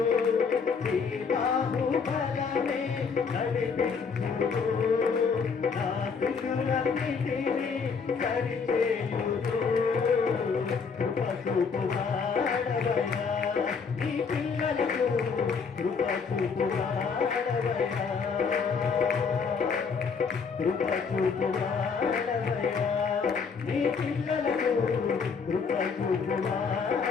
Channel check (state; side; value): quieter; right; 5.6 dB